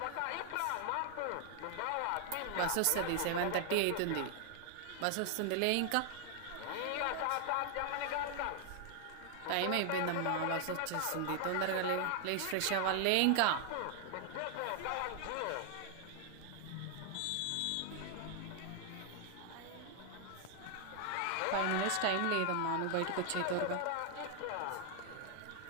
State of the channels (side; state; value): both; different; correlation 0.00